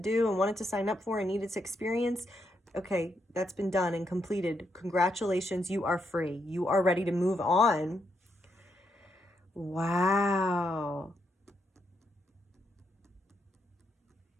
and wanted to sign up for and needed to experience, okay, that's been done and completed. Congratulations, you are free. You are ready to move on. Wow.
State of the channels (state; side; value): normal; both; correlation 0.79